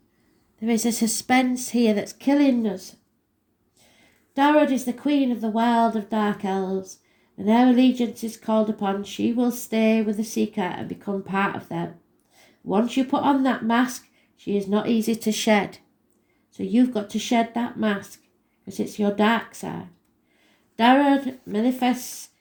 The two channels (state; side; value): identical; both; correlation 1.00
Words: There is a suspense here that's killing us. Darod is the queen of the world of dark elves, and her allegiance is called upon. She will stay with the seeker and become part of them. Once you put on that mask, she is not easy to shed. So you've got to shed that mask, because it's your dark side. Darod manifests